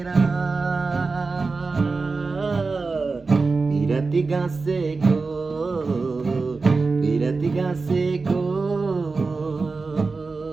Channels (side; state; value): left; quieter; 4.1 dB